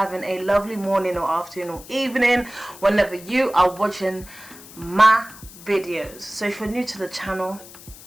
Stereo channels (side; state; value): left; noise; hiss, 18 dB below the sound